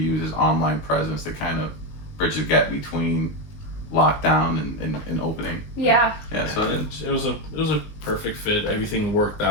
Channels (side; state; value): right; late; 19 ms